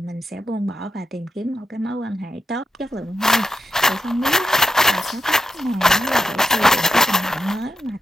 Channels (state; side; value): normal; both; correlation 0.86